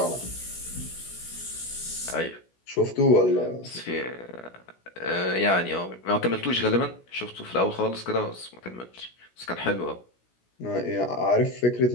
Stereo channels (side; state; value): right; late; 16 ms